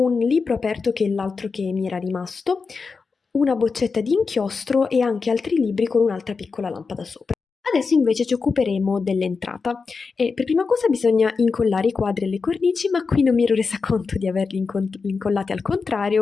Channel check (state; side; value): quieter; right; 4.8 dB